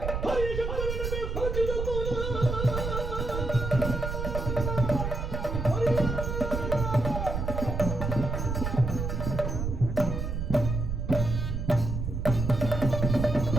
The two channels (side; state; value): right; noise; rumble, 3 dB below the sound